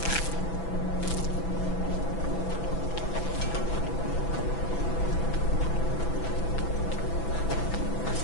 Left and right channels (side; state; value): right; late; 6.0 ms